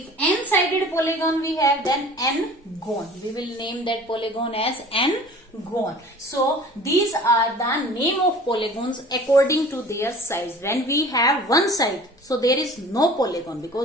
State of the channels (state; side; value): normal; both; correlation 0.45